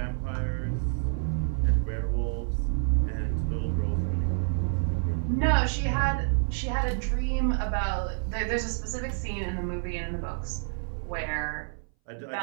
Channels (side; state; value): left; silent; 59 dB below the other